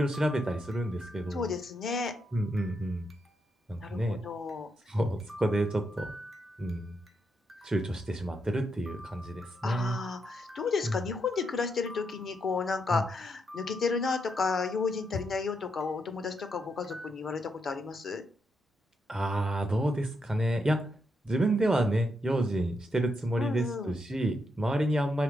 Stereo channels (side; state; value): both; normal; correlation 0.81